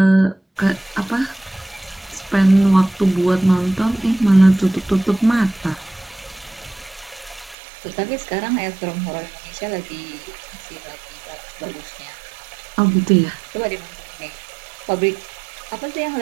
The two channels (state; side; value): drops out; left; at 7.6 s